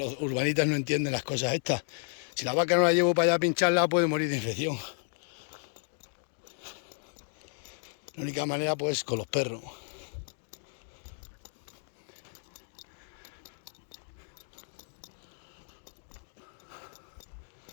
urbanitas no entienden las cosas estas. Si la vaca no la llevo para allá a pincharla, puede morir de infección. La única manera, pues, con los perros.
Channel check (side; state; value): right; silent; 56 dB below the other